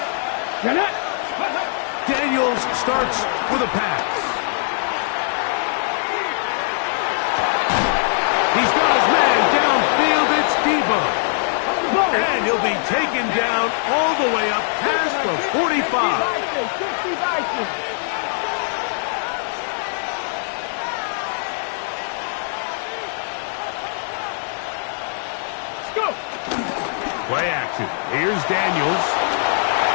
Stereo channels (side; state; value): right; silent; digital silence